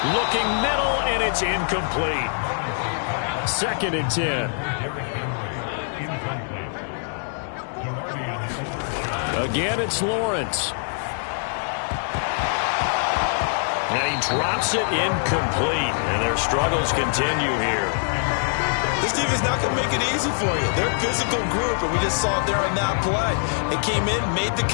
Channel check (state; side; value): silent; right; digital silence